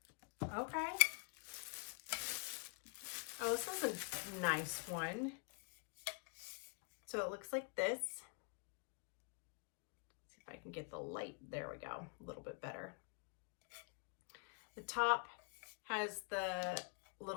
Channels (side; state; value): right; quieter; 36.4 dB